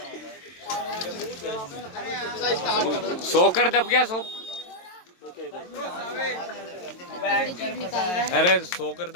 सोकर दब गया। अरे सोकर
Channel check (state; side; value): late; right; 22 ms